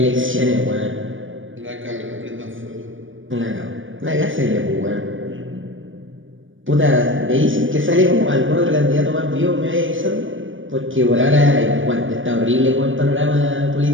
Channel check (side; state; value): left; late; 0.57 ms